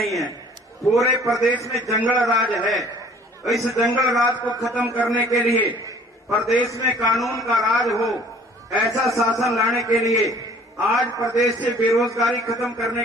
है, पूरे प्रदेश में जंगल राज है। इस जंगल राज को खत्म करने के लिए, प्रदेश में कानून का राज हो, ऐसा शासन लाने के लिए, आज प्रदेश से बेरोजगारी खत्म करने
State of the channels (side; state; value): both; normal; correlation 0.53